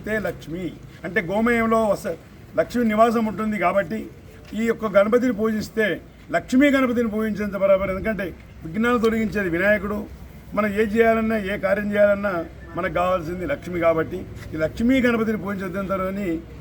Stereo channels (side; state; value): both; identical; correlation 1.00